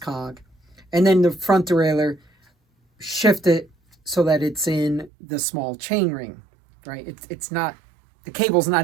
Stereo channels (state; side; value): drops out; left; at 5.1 s